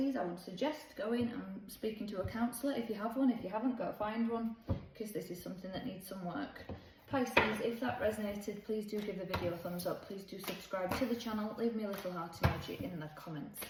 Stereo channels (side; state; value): both; identical; correlation 1.00